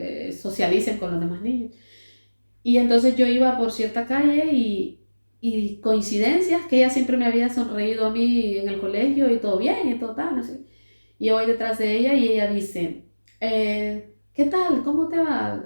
socialicen con los demás niños. Y entonces yo iba por cierta calle y coincidencias que ella siempre me había sonreído a mí en el colegio y todo bien y todo tal, no sé. Y yo voy detrás de ella y ella dice, ¿qué tal? ¿Cómo te va?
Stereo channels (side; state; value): both; inverted; correlation -1.00